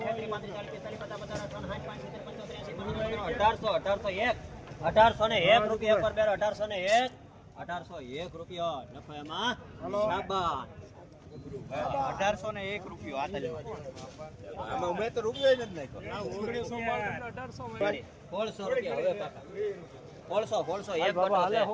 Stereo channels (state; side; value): identical; both; correlation 1.00